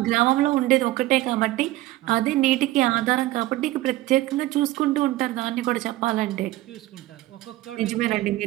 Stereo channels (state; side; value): quieter; left; 16.7 dB